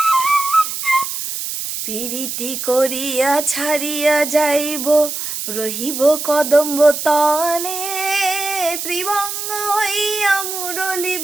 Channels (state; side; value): noise; right; hiss, 5 dB below the sound